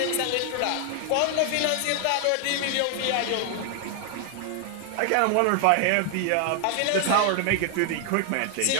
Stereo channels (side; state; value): both; different; correlation 0.00